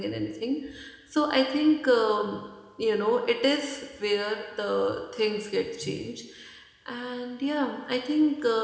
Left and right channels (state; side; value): identical; both; correlation 1.00